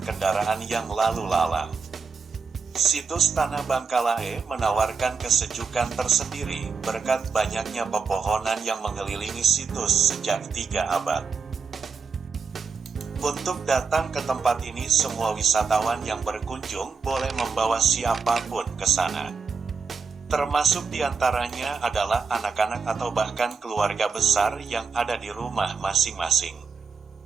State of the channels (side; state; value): left; quieter; 5.2 dB